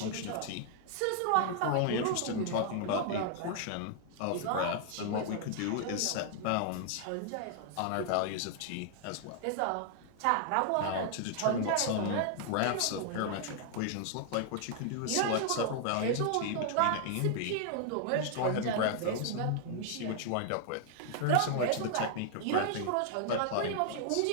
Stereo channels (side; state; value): both; different; correlation 0.00